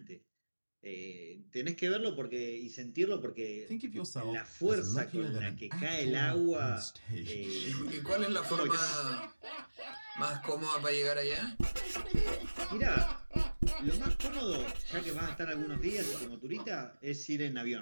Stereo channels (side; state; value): both; inverted; correlation -1.00